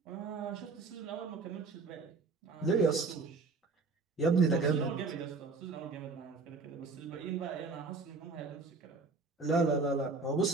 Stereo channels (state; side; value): quieter; left; 4.2 dB